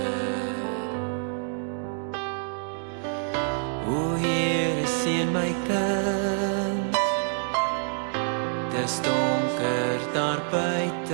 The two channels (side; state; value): left; silent; 60 dB below the other